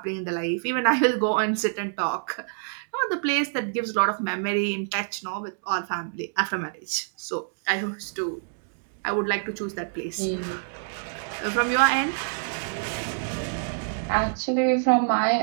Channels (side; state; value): left; silent; digital silence